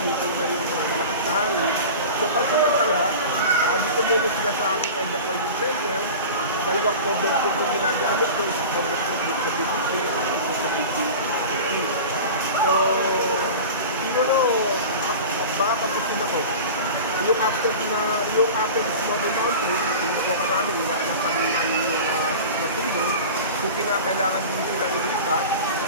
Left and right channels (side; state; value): both; inverted; correlation -0.33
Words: na yung malakas na hangin. So pansamantala, dito muna sila sa aking evacuation center. Dalawang cover food yung ginagamit ko, isang cover food sa BGC, isa sa BGC. So, siguro, baka kapusin ako. Yung after Smoky Mountain, inuwa ka namin, inaanak kami namin yung matulog. Kung kinakailangan din sila ilipat,